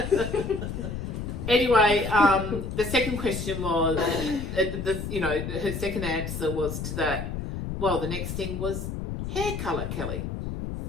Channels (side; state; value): left; noise; rumble, 5 dB below the sound